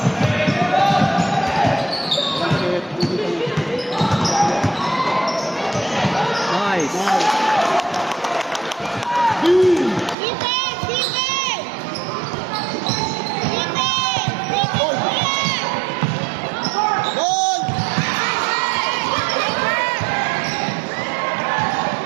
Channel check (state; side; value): drops out; left; at 10.2 s